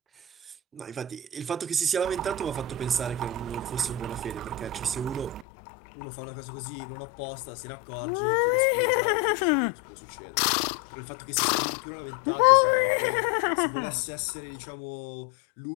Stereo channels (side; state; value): right; drops out; at 5.5 s